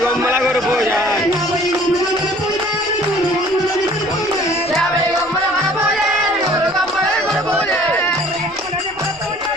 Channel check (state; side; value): noise; left; rumble, 24 dB below the sound